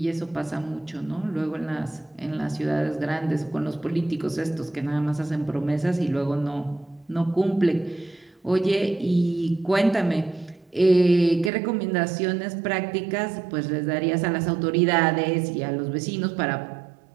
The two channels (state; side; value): drops out; left; at 11.5 s